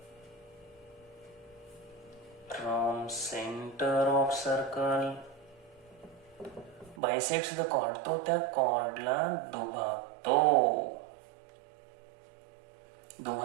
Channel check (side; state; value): left; drops out; at 7.0 s